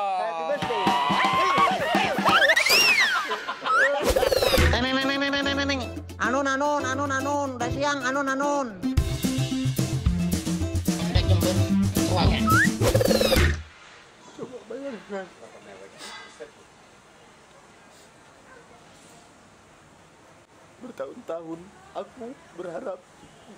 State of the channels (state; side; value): identical; both; correlation 1.00